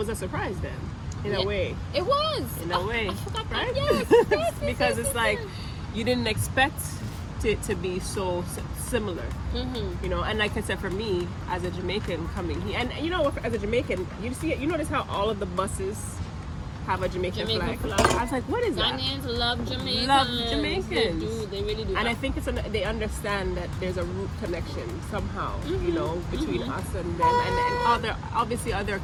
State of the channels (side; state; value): both; identical; correlation 1.00